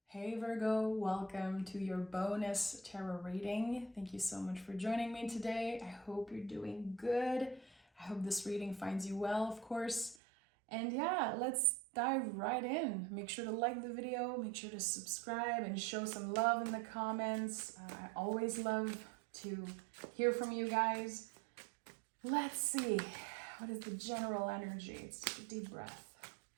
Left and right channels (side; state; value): left; drops out; at 10.2 s